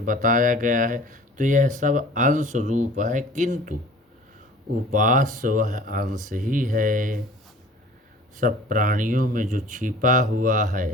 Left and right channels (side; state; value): both; normal; correlation 0.46